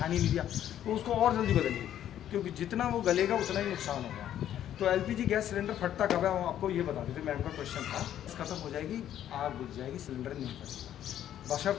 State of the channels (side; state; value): right; quieter; 11.1 dB